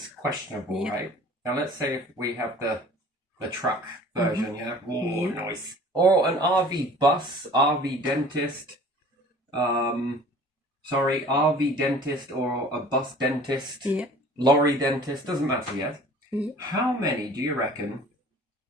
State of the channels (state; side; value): normal; both; correlation 0.47